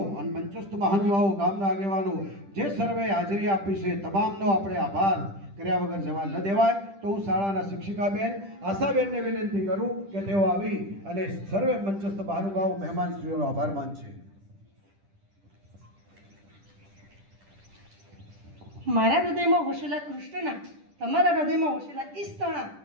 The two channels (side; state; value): left; late; 10 ms